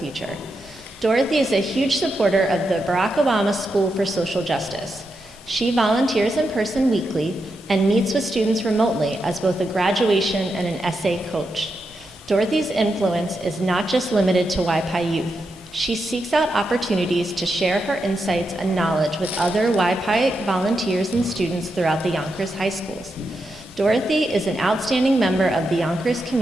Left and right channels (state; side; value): normal; both; correlation 0.85